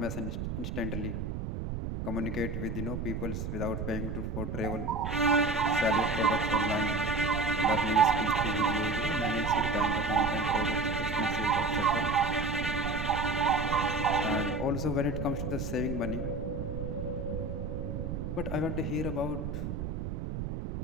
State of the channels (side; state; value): right; noise; rumble, 4 dB below the sound